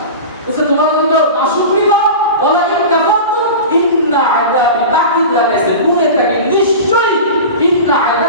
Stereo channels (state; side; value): inverted; both; correlation -0.30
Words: বলছে তোমরা যদি নাশুকরি করো, ওয়া লা ইন কাফারতুম ইন্না আযাবি, তাকিদ লাগাইছে গুণে থাকে, নিশ্চয়ই ইন্না